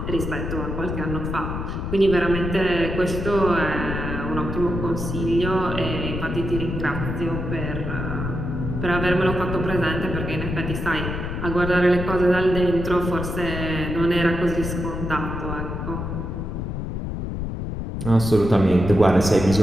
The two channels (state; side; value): noise; left; rumble, 4 dB below the sound